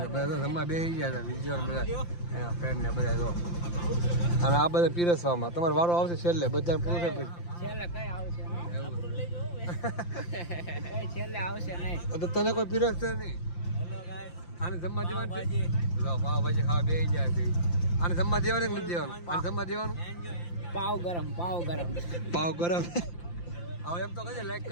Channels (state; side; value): late; right; 5.8 ms